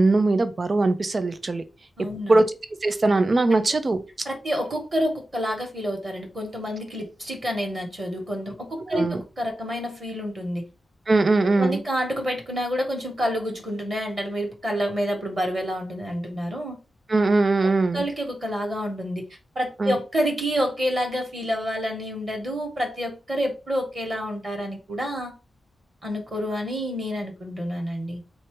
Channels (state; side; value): normal; both; correlation 0.91